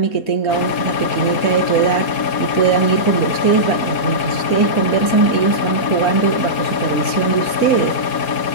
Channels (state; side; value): late; right; 4.2 ms